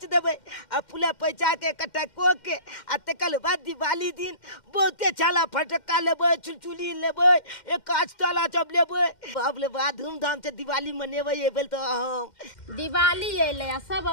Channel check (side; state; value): right; late; 2.1 ms